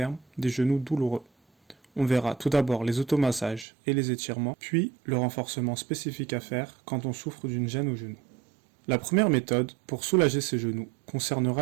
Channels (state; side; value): drops out; left; at 3.7 s